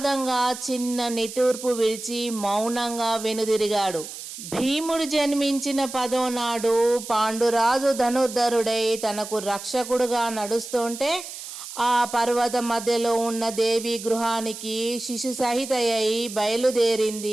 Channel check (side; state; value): right; noise; hiss, 11 dB below the sound